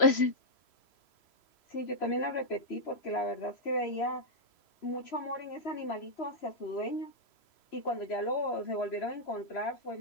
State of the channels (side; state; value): right; late; 3.0 ms